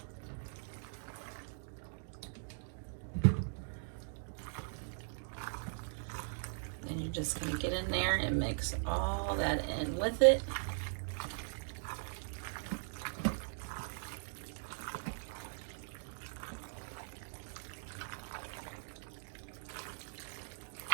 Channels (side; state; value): left; silent; digital silence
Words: You're just going to get in there and mix all that in with it.